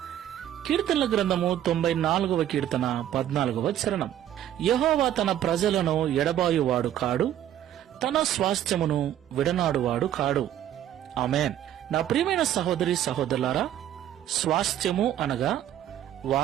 కీర్తనల గ్రంథము 94వ కీర్తన 14వ చరణం. యెహోవా తన ప్రజలను ఎడబాయువాడు కాడు, తన స్వాస్థ్యమును విడనాడువాడు కాడు. ఆమేన్. నా ప్రియమైన సహోదరి సహోదరులారా, స్వాస్థ్యము అనగా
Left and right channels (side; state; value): left; quieter; 11.4 dB